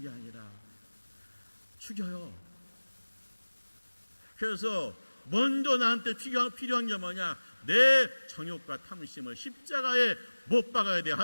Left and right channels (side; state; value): both; inverted; correlation -1.00